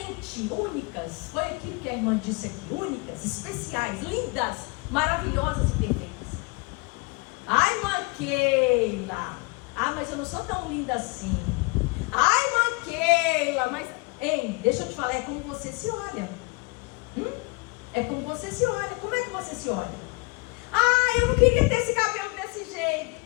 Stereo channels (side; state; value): right; quieter; 28.5 dB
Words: únicas. Foi aquilo que a irmã disse aqui, únicas, especiais, lindas, maravilhosas e perfeitas. Ai, irmã Keila, mas eu não sou tão linda assim. Ai, irmã Keila, mas... Ei, deixa eu te falar, é como você se olha. É como você se olha. Como é que você se olha? Eu não queria ter esse cabelo desse jeito.